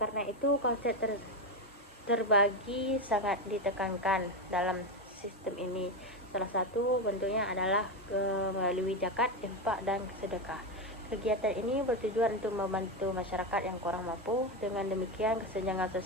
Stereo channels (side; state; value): both; normal; correlation 0.13